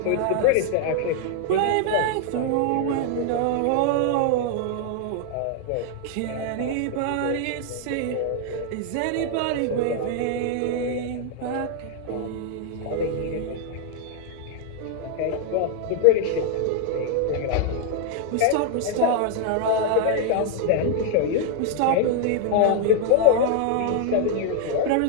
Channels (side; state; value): both; different; correlation 0.00